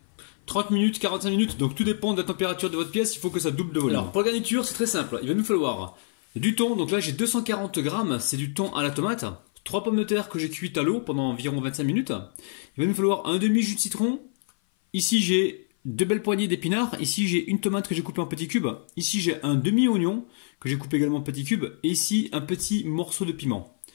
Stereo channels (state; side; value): silent; right; 56 dB below the other